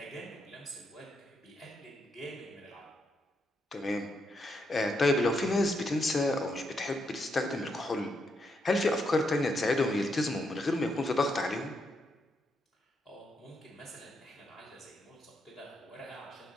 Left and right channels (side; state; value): both; normal; correlation 0.79